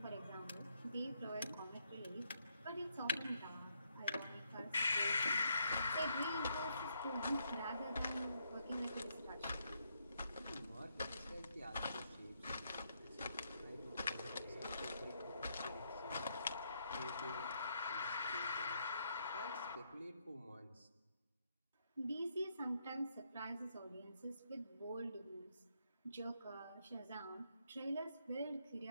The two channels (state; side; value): inverted; both; correlation -0.76